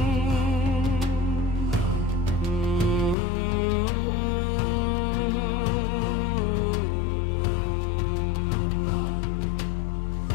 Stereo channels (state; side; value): drops out; right; at 3.2 s